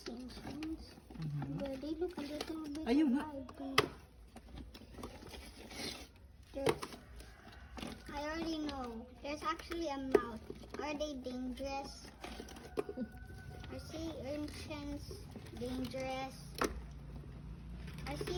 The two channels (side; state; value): both; identical; correlation 1.00